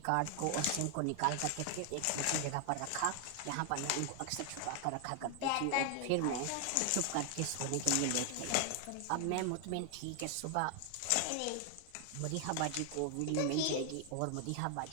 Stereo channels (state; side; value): different; both; correlation 0.00